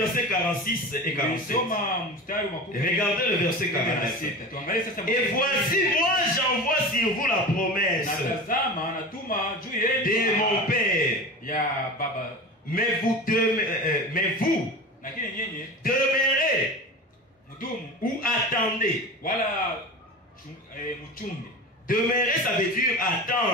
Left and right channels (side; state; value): both; normal; correlation 0.31